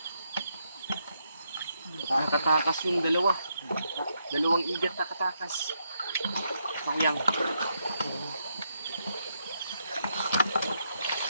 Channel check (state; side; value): inverted; both; correlation -0.79